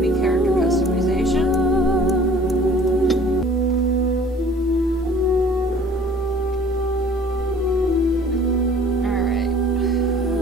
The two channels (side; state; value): both; normal; correlation 0.50